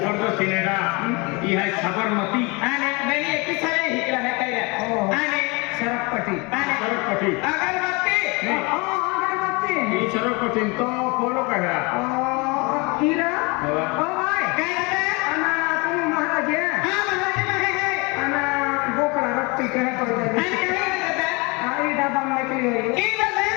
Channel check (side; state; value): right; quieter; 27.7 dB